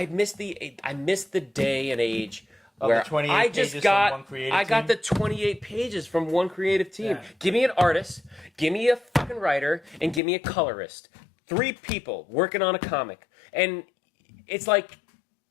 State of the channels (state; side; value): drops out; right; at 10.2 s